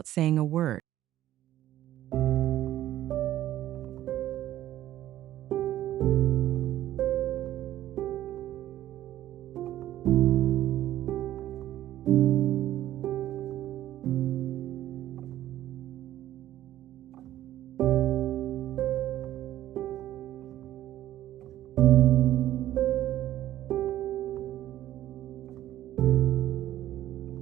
saying a word.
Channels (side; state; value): left; quieter; 13.3 dB